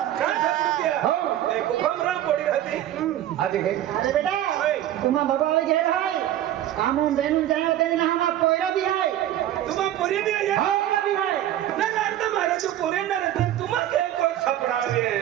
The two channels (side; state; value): left; quieter; 12.4 dB